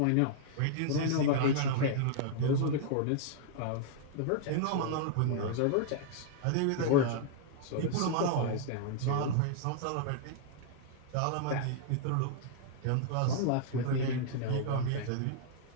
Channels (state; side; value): different; both; correlation -0.01